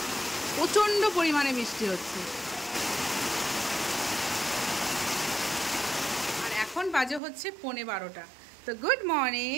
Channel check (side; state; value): left; drops out; at 7.2 s